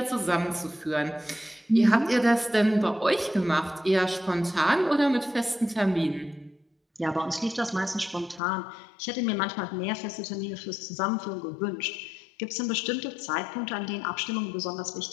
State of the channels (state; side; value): drops out; right; at 8.4 s